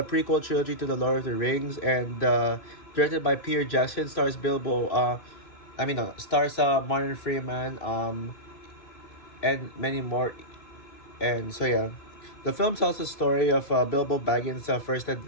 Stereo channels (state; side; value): late; right; 3.0 ms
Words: prequel trilogy to the Lord of the Rings, and directed by Peter Jackson, stars Bilbo. Stars Martin Freeman, and many more. And so yeah, the film tells the story of Bilbo Baggins' first